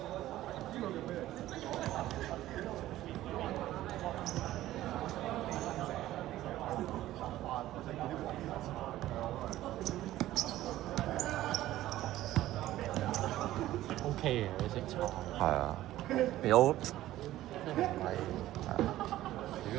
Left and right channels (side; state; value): left; quieter; 14.7 dB